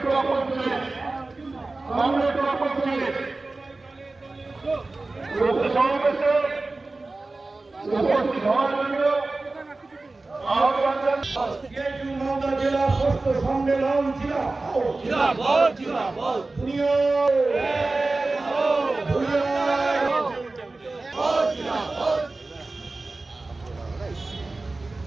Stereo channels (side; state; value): left; quieter; 3.3 dB